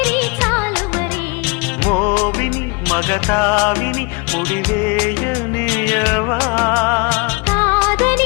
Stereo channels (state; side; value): quieter; right; 29.6 dB